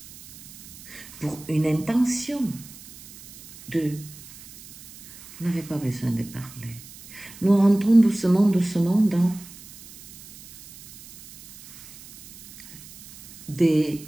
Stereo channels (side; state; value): right; noise; hiss, 19 dB below the sound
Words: pour une intention de... Vous n'avez pas besoin de parler. Nous rentrons doucement, doucement dans des